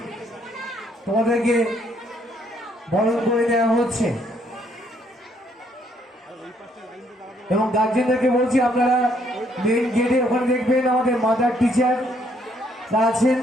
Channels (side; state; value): both; normal; correlation 0.69